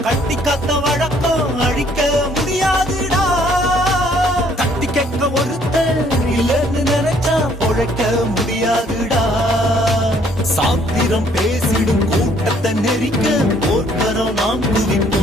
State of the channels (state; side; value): normal; both; correlation 0.63